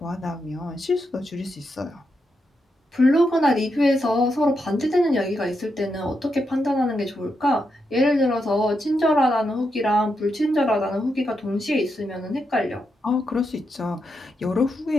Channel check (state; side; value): normal; both; correlation 0.84